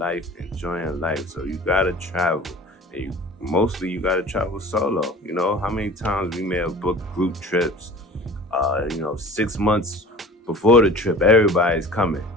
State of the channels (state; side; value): normal; both; correlation 0.43